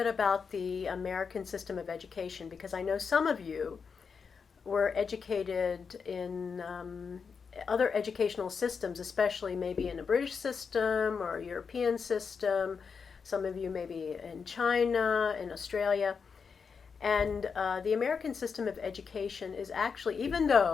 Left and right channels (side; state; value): right; quieter; 5.8 dB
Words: about the American system of education because I know some of you were educated in other educational systems, especially maybe in a British system or a European system. Some of you maybe in China, in Australia. And the American system of education is actually, even